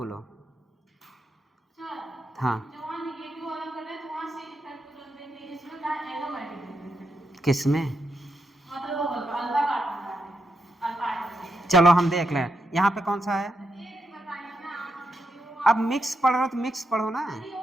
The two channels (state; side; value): normal; both; correlation 0.83